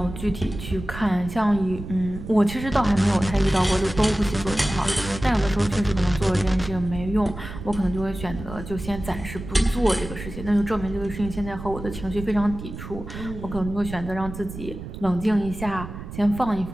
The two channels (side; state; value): right; noise; rumble, 10 dB below the sound